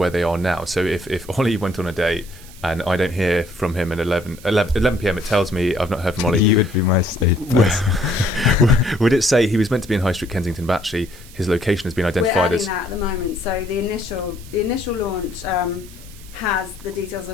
they are now? So if Ollie went on a date and I don't hear from him at 11 p.m, it tells me I've not heard from Ollie. You would be my safe person. Would it say he was meant to be in High Street, Kensington, but actually his location has been identified as... We're adding that at the moment. So the initial launch has the details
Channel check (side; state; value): right; noise; hiss, 21 dB below the sound